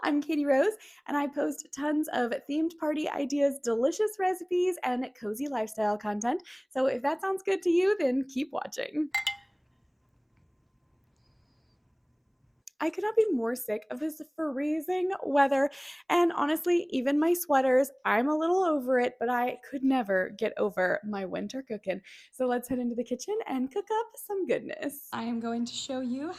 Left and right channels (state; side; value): identical; both; correlation 1.00